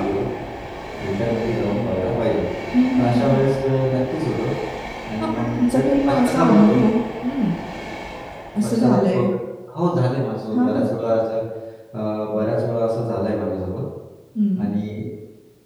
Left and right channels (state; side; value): identical; both; correlation 1.00